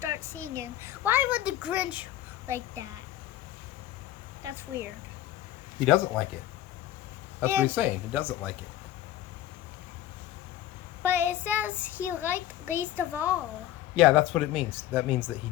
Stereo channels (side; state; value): right; quieter; 13.1 dB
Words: singing. Why would the Grinch like that? That's weird. He doesn't like it. That's what he's saying. He doesn't like it. But it says he liked least of all. Yeah, that's what it means. That means that he